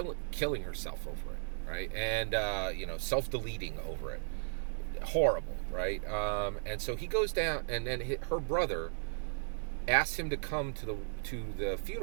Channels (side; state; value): left; silent; digital silence